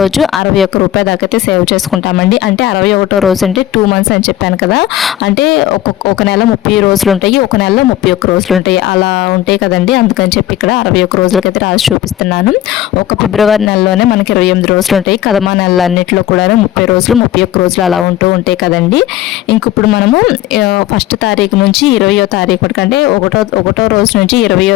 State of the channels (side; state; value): right; quieter; 13.4 dB